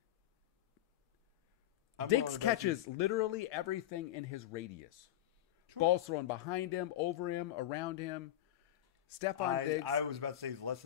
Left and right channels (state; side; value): quieter; right; 12.4 dB